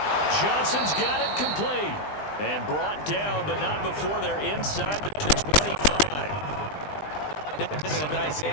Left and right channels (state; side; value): late; right; 20 ms